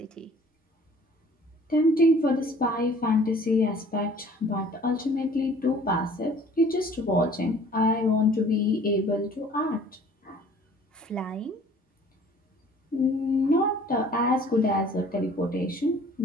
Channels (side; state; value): both; normal; correlation 0.52